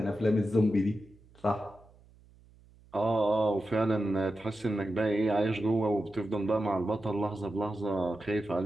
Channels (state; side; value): noise; right; hum, 27 dB below the sound